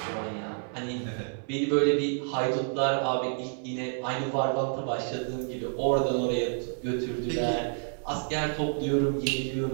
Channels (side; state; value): left; silent; 58 dB below the other